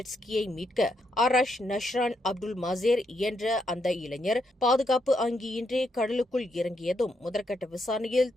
மீட்க ஆராஷ் நஷ்ரான் அப்துல் மாசேர் என்ற அந்த இளைஞர் பாதுகாப்பு அங்கியின்றி கடலுக்குள் இறங்கியதும் முதற்கட்ட விசாரணையில்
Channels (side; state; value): both; normal; correlation 0.79